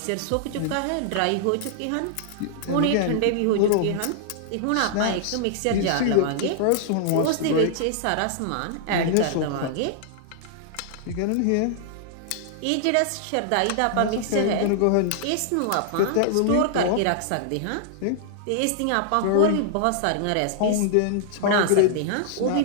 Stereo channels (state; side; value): different; both; correlation -0.01